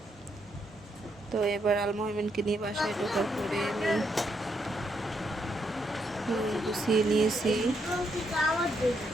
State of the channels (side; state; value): both; normal; correlation 0.77